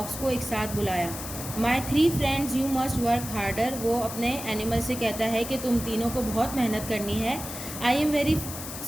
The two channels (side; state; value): left; noise; hiss, 9 dB below the sound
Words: को एक साथ बुलाया। माई 3 friends you must work harder, वो अपने एनिमल से कहता है कि तुम तीनों को बहुत मेहनत करनी है। I am very